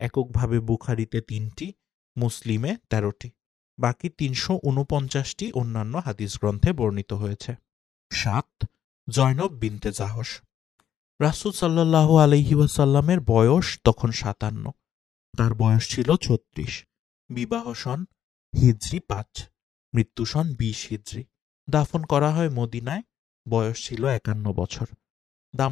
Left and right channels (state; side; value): quieter; right; 9.9 dB